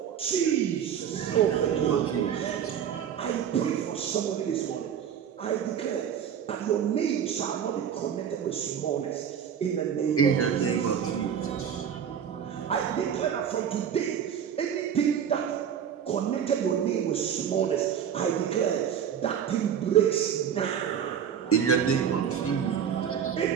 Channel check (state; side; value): quieter; left; 8.4 dB